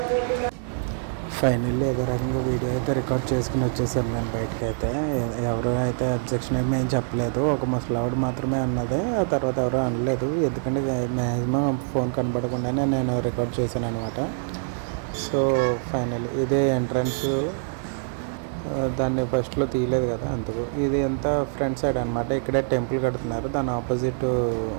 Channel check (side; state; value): left; silent; 62 dB below the other